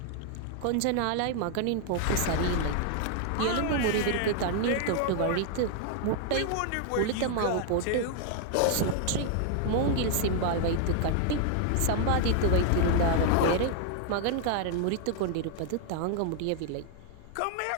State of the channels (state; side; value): different; both; correlation 0.00